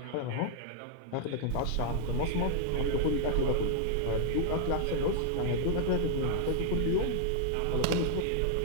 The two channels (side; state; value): both; different; correlation 0.00